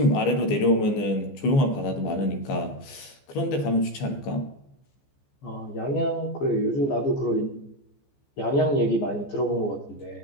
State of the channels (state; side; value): late; right; 14 ms